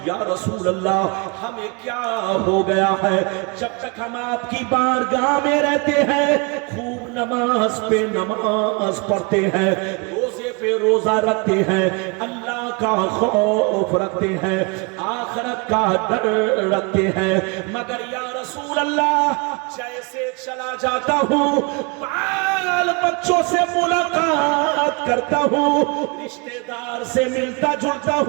या रसूल अल्लाह हमें क्या हो गया है, जब तक हम आपकी बारगाह में रहते हैं खूब नमाज पे नमाज पढ़ते हैं, रोजे पे रोजा रखते हैं, अल्लाह का खौफ रखते हैं, आखिरत का डर रखते हैं, मगर या रसूल अल्लाह जैसे चला जाता हूँ बाल बच्चों से मुलाकात करता हूँ, रिश्तेदार से मिलता जुलता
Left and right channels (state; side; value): quieter; left; 30.8 dB